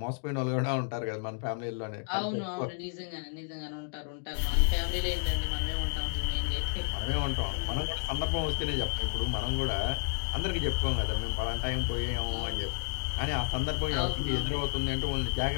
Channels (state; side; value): silent; right; digital silence